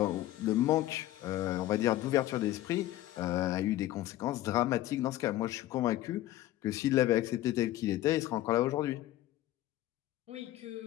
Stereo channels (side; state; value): right; quieter; 14.8 dB